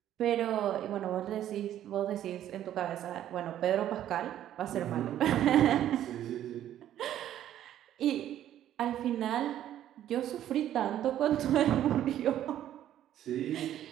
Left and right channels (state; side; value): quieter; left; 11.7 dB